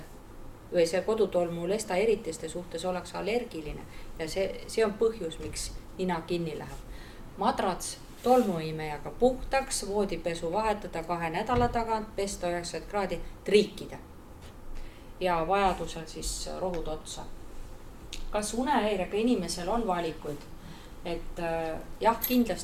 või see kodutolmulesta eritiste suhtes ollakse allergiline ja see on põhjus, miks nina kinni läheb. Madrats tolmuimejaga puhtaks, voodipesu vahetada 2 nädala tagant, pesta 90 kraadi, triikida ja vajadusel siis rohud otsa. Kas unehäirega inimesel on valikuid? Et jah,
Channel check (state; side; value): identical; both; correlation 1.00